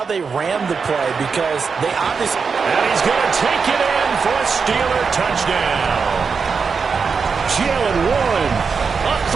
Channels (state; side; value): quieter; left; 5.4 dB